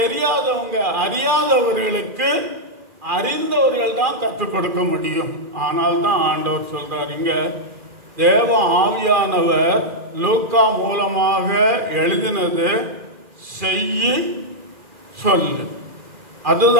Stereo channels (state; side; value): late; left; 2.4 ms